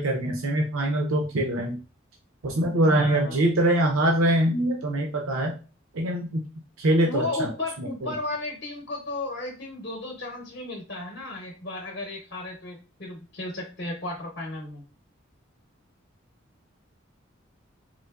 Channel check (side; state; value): both; normal; correlation 0.41